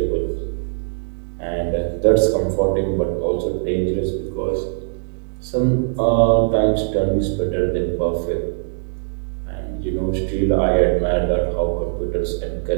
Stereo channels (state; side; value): silent; left; digital silence